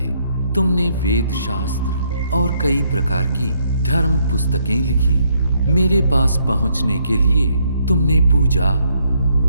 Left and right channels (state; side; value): inverted; both; correlation -0.72